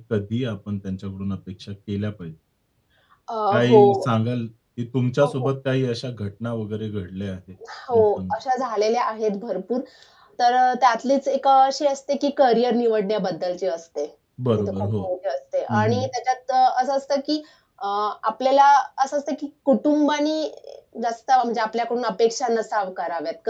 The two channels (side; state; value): both; identical; correlation 1.00